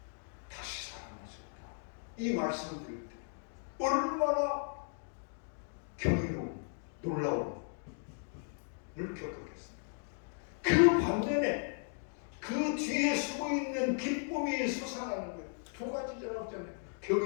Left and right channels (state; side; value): silent; right; 54 dB below the other